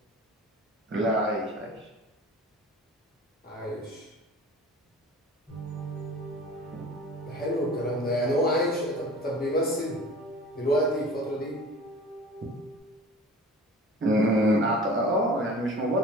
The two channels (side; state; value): both; normal; correlation 0.41